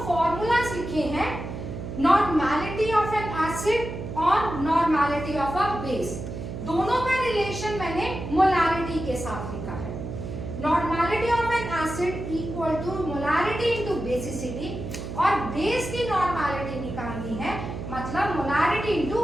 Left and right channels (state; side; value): noise; right; hum, 7 dB below the sound